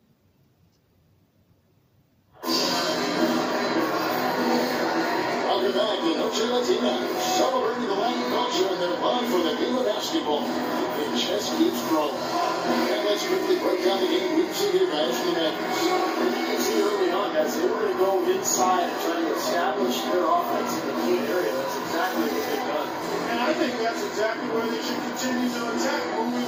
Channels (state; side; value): identical; both; correlation 1.00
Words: Welcome back to Noche Latina, celebrating the Latin culture and their love for the game of basketball. The chess keeps growing. And let's quickly break down the game we've seen here, guys, for the Mavericks. You can see early on, guys, they were going to go inside and try to establish their offense in the paint area. That's exactly what they've done. And I think that's exactly where they should continue to attack moving